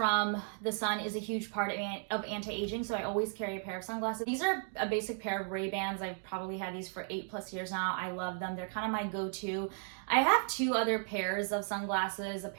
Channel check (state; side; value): silent; left; 54 dB below the other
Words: the sun is a huge part of anti-aging, so I always carry a pair of sunglasses. These are a basic pair of Ray-Bans. I've probably had these for 8+ years now. I love them. They're kind of my go-to. I have 2 other pairs of sunglasses, a